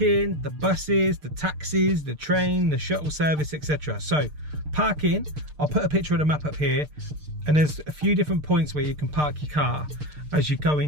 the buses, the taxis, the train, the shuttle service, etc. So parking, I'll put a picture of the map up here, and there's a few different points where you can park your car as you go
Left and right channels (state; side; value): late; left; 6.6 ms